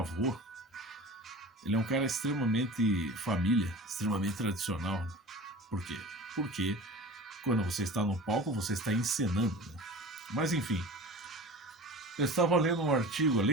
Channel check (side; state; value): both; normal; correlation 0.37